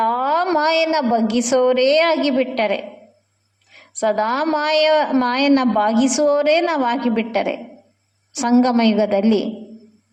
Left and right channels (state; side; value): identical; both; correlation 1.00